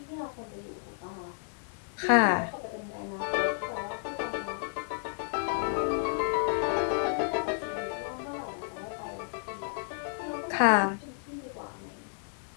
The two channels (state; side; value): silent; right; 57 dB below the other